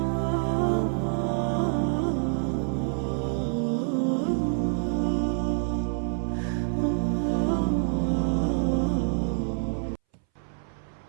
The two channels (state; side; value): silent; left; 60 dB below the other